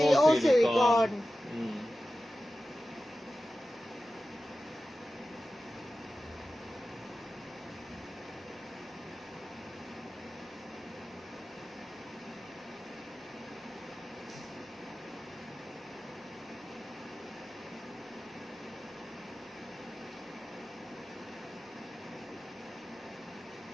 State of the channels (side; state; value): both; normal; correlation 0.94